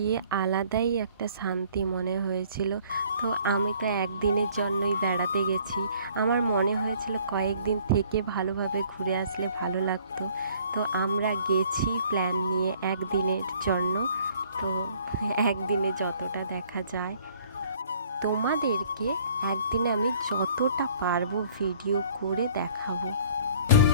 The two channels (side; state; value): both; inverted; correlation -0.56